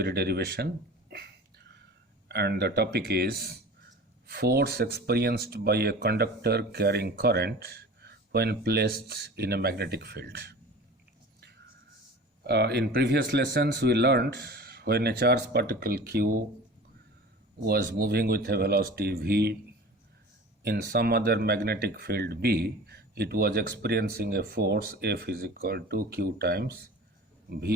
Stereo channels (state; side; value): normal; both; correlation 0.39